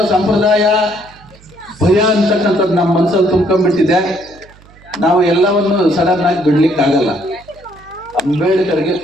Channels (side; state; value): right; noise; hum, 25 dB below the sound